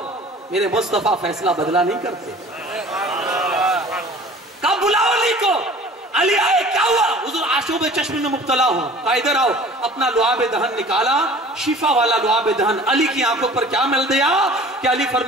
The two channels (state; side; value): normal; both; correlation 0.46